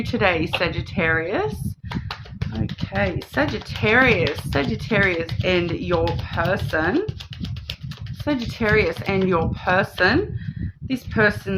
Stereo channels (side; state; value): both; identical; correlation 1.00